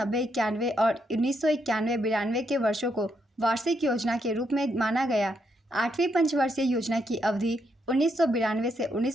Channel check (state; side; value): normal; both; correlation 0.78